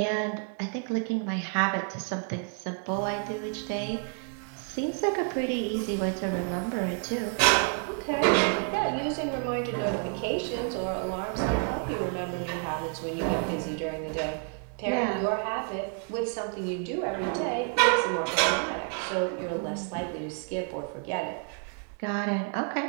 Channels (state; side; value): quieter; left; 39.3 dB